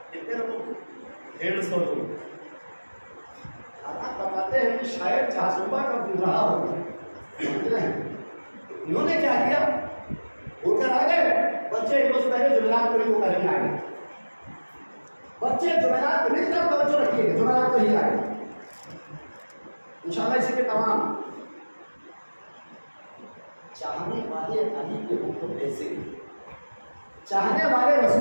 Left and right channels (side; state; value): both; inverted; correlation -1.00